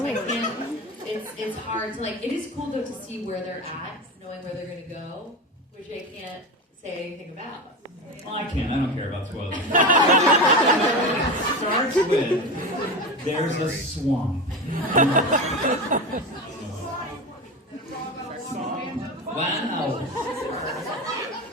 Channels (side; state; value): both; normal; correlation 0.23